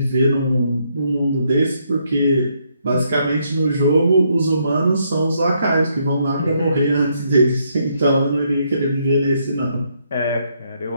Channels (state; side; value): inverted; both; correlation -0.74